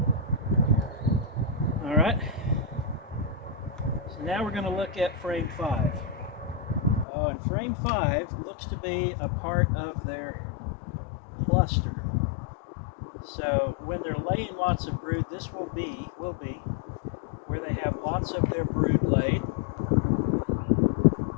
All right, so now we're going to look at frame 5. Oh, and frame 5 looks to be a part of their cluster. So when they're laying lots of brood, this will be where they have lots of their brood laid.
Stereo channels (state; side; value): drops out; right; at 7.1 s